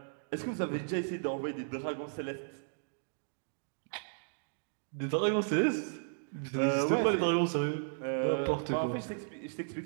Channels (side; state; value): left; silent; digital silence